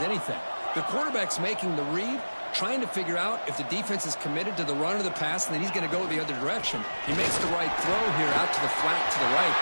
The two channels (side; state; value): both; inverted; correlation -1.00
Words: anything. The quarterback's making the read, trying to figure out if the defense is committed to the run or the pass, and then he's going to go the other direction. He makes the right throw here out to the flat to the right,